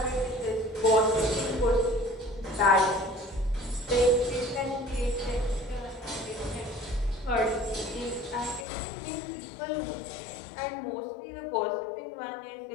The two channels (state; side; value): drops out; right; at 8.7 s